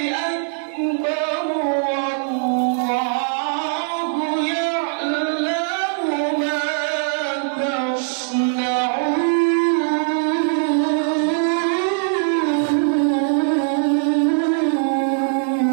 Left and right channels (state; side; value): silent; left; 65 dB below the other